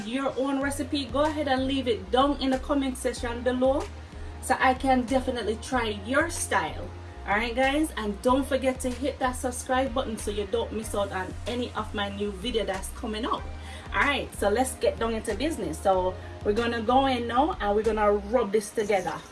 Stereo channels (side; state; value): both; identical; correlation 1.00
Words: your own recipe, go ahead and leave it down in the comment section below, so I can definitely try your style. Alright guys, and don't forget to hit that subscribe button so you don't miss out on any of my new video that's coming up. Alright, so let's get down into business. So we're gonna go in now and we're gonna rub this together